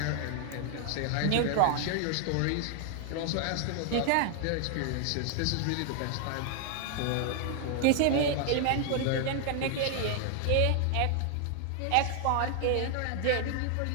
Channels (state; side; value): different; both; correlation 0.00